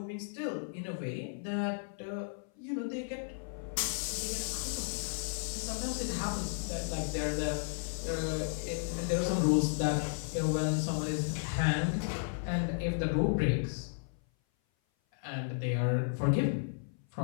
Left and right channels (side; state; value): right; silent; 55 dB below the other